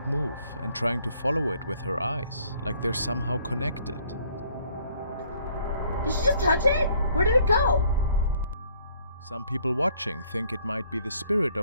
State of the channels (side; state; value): both; inverted; correlation -0.63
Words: move and trying to follow it with her eyes, like they're somehow connected. Did she just touch it? Where did it go? Some people watching think it might be the spirit